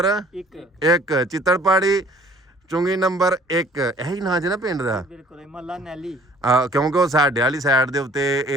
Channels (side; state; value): both; normal; correlation 0.54